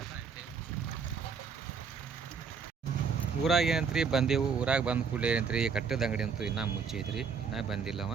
ಊರಾಗ ಏನಂತ್ರಿ ಬಂದೆವು. ಊರಾಗ ಬಂದ ಕೂಡಲೇ ಏನಂತ್ರಿ, ಕಟ್ಟದ ಅಂಗಡಿ ಅಂತೂ ಇನ್ನೂ ಮುಚ್ಚೈತ್ರಿ, ಇನ್ನೂ ಬಂದಿಲ್ಲವ.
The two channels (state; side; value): quieter; left; 5.8 dB